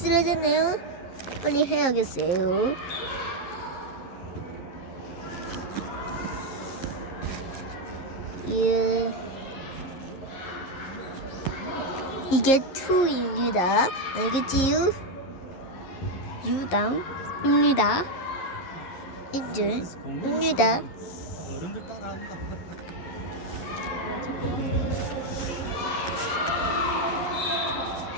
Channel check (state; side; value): late; right; 11 ms